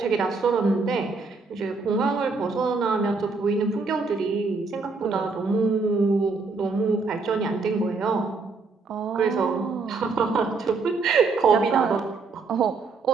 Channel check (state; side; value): quieter; left; 4.3 dB